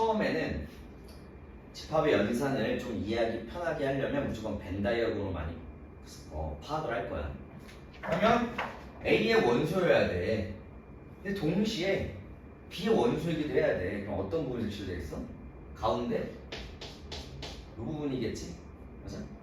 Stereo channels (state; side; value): identical; both; correlation 1.00